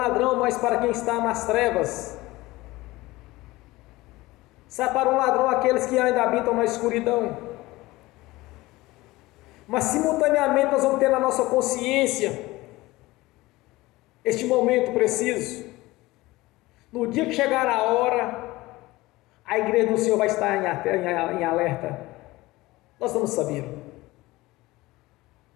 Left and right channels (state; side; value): quieter; right; 19.6 dB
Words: mas para quem está nas trevas. Será para um ladrão aqueles que ainda habitam na escuridão. Mas simultaneamente nós vamos ter na nossa consciência este momento preciso. No dia que chegar a hora, a igreja do Senhor vai estar em alerta. Nós vamos saber.